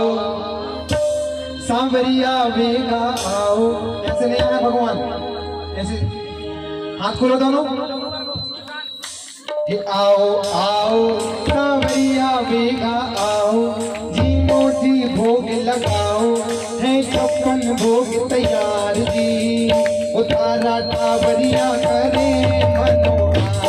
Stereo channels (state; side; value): identical; both; correlation 1.00